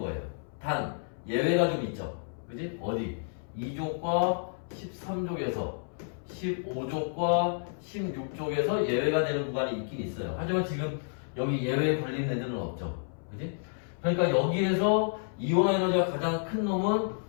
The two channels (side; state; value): right; silent; 58 dB below the other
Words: 단, 예외가 좀 있죠. 그지? 어디? 2족과 13족에서 15족과 16족에서 예외가 되는 구간이 있긴 있어요. 하지만 지금 여기 예외에 걸린 애들은 없죠. 그지? 그러니까 여기에서 이온화 에너지가 가장 큰 놈은